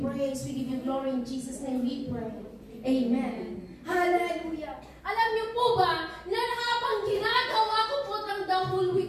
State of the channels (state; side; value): identical; both; correlation 1.00